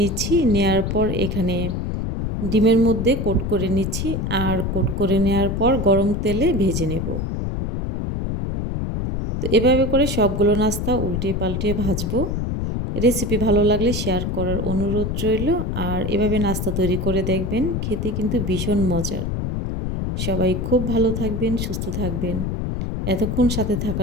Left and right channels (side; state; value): left; noise; rumble, 2 dB below the sound